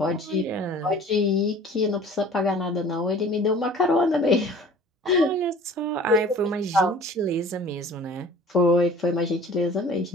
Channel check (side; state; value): both; normal; correlation 0.47